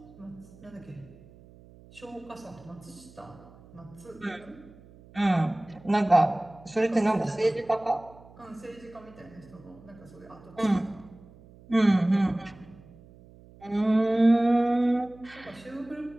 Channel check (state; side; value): noise; right; hum, 23 dB below the sound